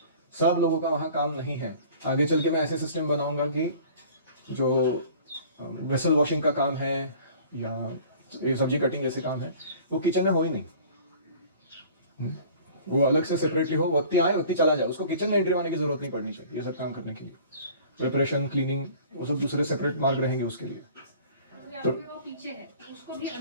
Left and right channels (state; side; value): inverted; both; correlation -0.47